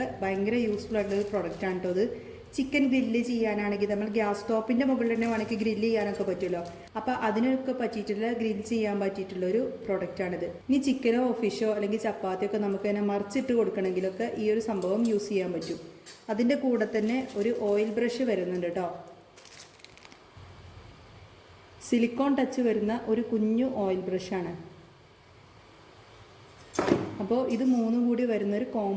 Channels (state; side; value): identical; both; correlation 1.00